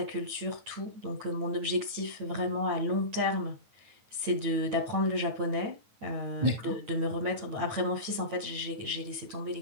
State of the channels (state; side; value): late; left; 9.2 ms